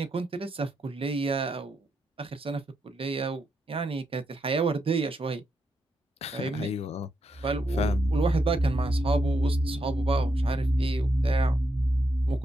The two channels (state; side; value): normal; both; correlation 0.82